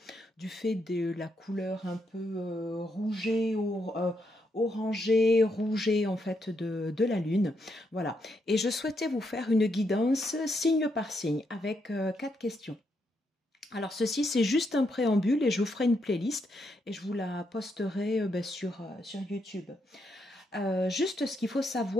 du fait de la couleur un peu rouget, orangé, rouget en fait de la lune. Voilà. Et je souhaitais vous faire une guidance signe par signe avec 4 questions. Alors ceci, c'est juste un préambule et je vous ferai une playlist et je vous la posterai sur YouTube. Juste ce qu'il faut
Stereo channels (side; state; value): both; normal; correlation 0.79